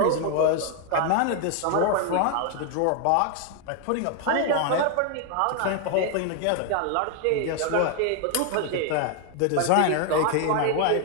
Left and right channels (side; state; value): both; different; correlation 0.00